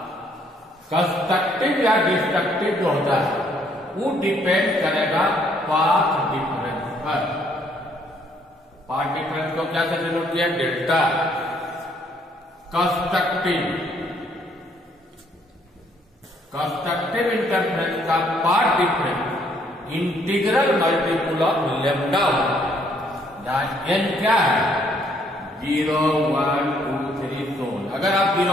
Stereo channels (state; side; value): normal; both; correlation 0.66